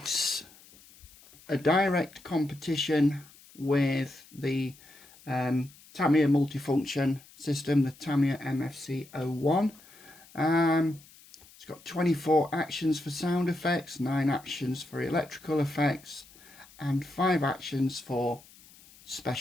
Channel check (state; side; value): noise; left; hiss, 24 dB below the sound